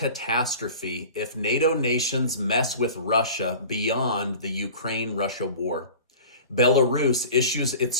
if NATO nations mess with Russia beyond the Ukraine-Russia war. Belarus issues its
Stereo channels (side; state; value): both; inverted; correlation -0.39